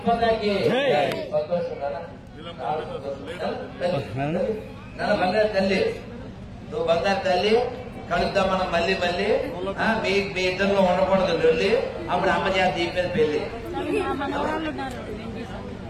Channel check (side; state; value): both; identical; correlation 1.00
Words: మాతాకి బంగారు తల్లి, నువ్వు బంగారు తల్లి. కలుద్దాం మనం మళ్ళీ మీ ఇద్దరిలో ఉండకూడదు వెళ్ళి. అప్పుడు అమ్మ చేత దీపేది పెళ్లి